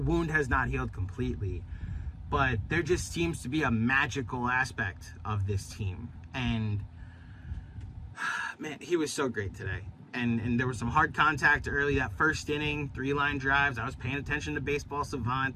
has not healed completely, but there just seems to be a magical aspect of this team. And man, he was so great today. And there was some hard contact early, that first inning, 3-line drives. I was paying attention to Baseball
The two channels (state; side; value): identical; both; correlation 1.00